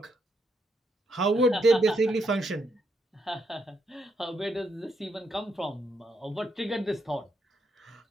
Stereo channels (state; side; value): normal; both; correlation 0.77